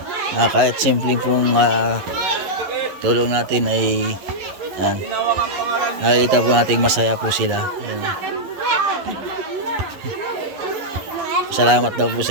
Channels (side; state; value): left; late; 11 ms